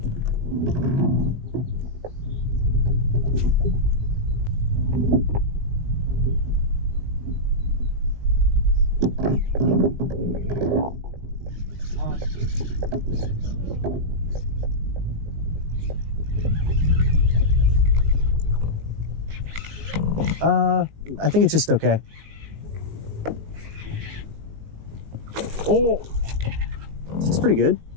I think it's just okay. Oh, it's pretty good.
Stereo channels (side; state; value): left; late; 18 ms